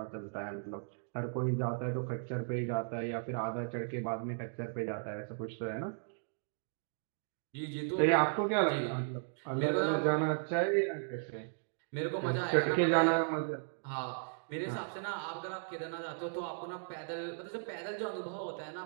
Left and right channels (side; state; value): left; silent; digital silence